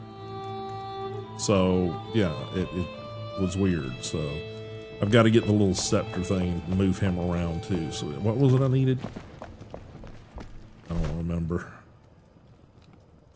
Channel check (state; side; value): identical; both; correlation 1.00